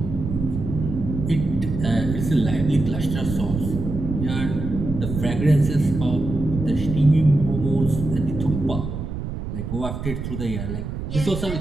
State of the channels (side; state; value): right; noise; rumble, 5 dB below the sound